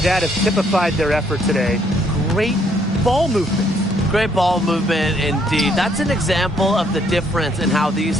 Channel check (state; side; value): normal; both; correlation 0.68